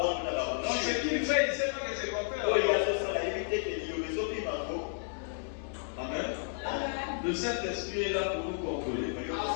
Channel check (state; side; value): silent; right; 56 dB below the other